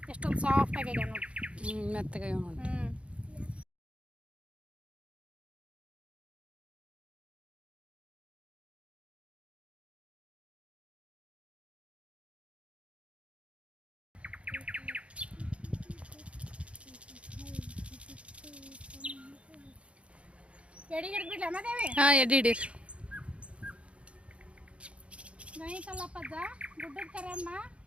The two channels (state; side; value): late; left; 0.061 ms